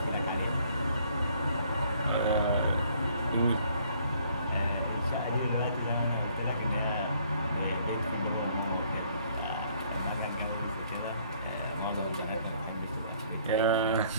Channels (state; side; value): inverted; both; correlation -0.63